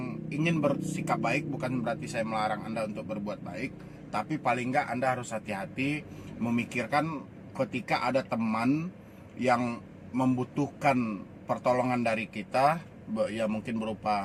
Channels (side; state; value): both; identical; correlation 1.00